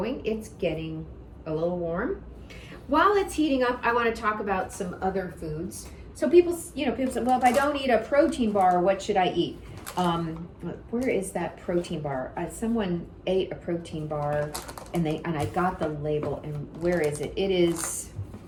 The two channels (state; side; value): identical; both; correlation 1.00